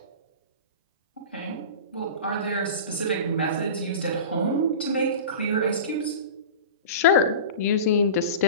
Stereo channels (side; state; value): both; inverted; correlation -0.32